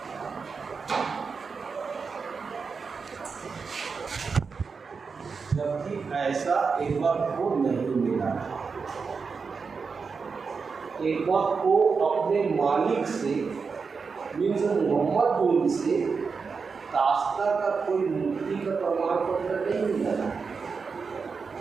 जबकि ऐसा एक बार को नहीं मिला। एक बार को अपने मालिक से, मीन्स मोहम्मद से दास्ता का कोई मुक्ति का प्रमाण पत्र नहीं मिला,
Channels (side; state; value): left; quieter; 5.1 dB